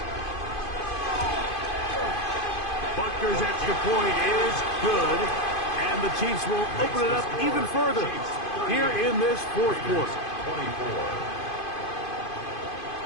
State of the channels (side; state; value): right; late; 2.5 ms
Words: Butker's extra point is good, and the Chiefs will open it up even further here in this fourth quarter. 24.